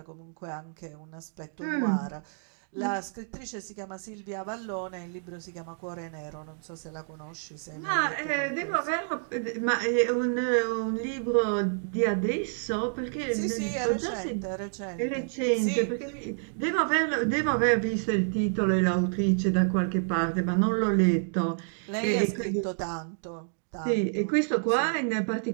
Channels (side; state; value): left; silent; digital silence